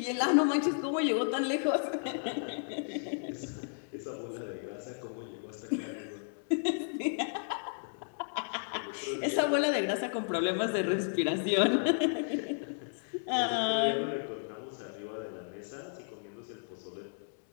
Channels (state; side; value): silent; right; digital silence